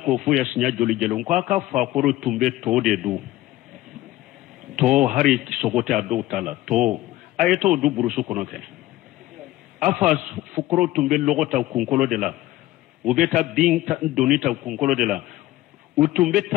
fu ya sinya joli jelon ko aka fakuru tumbe to de du to hari sogote ado tala to ayeto du burusu kono ke afa fukro tumbe logota kunkolo de la ubeta binta donita kunkolo de la utumbe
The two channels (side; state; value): right; quieter; 16.1 dB